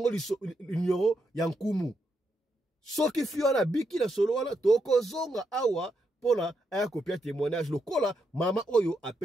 li nyoro ya nkumu soki fio na biki na solo wana toko zonga awa pona aya kopia témoignage lokola mama oyo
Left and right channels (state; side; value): normal; both; correlation 0.81